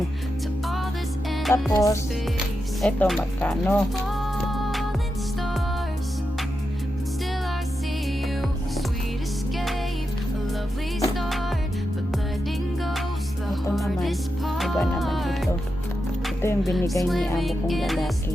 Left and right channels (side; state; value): both; normal; correlation 0.88